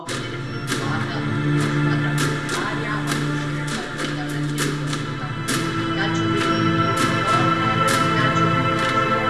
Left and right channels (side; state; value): both; identical; correlation 1.00